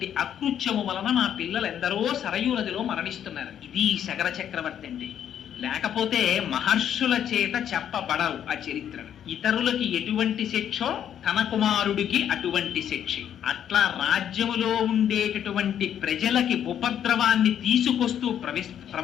అకృత్యము వలన మా పిల్లలు ఎందరో సరయూ నదిలో మరణిస్తున్నారు. ఇది సగర చక్రవర్తి అండి. లేకపోతే మహర్షుల చేత చెప్పబడవు ఆ చరిత్రను. ఇతరులకి ఎటువంటి శిక్షో తన కుమారుడికి అటువంటి శిక్ష. అట్లా రాజ్యములో ఉండేటటువంటి ప్రజలకి ఉపద్రవాన్ని తీసుకొస్తూ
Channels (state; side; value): quieter; right; 9.6 dB